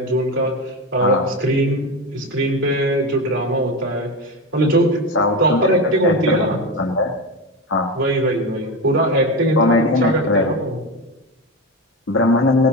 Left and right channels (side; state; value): both; normal; correlation 0.20